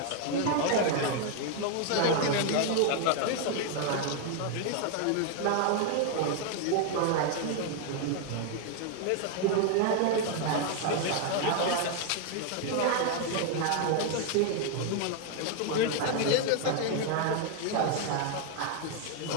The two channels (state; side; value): different; both; correlation 0.01